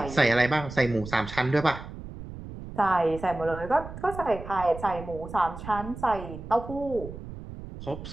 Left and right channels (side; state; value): right; noise; rumble, 12 dB below the sound